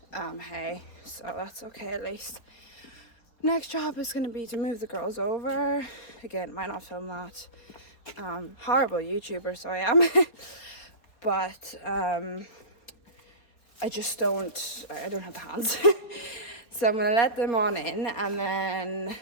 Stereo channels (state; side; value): late; right; 4.0 ms